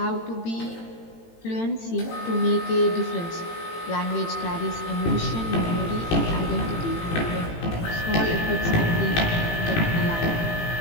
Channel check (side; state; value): right; late; 18 ms